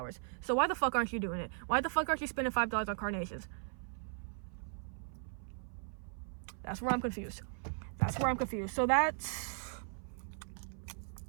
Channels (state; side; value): silent; left; 53 dB below the other